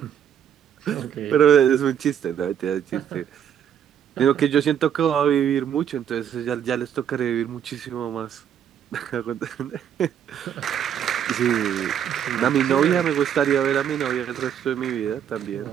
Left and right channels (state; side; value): quieter; left; 9.0 dB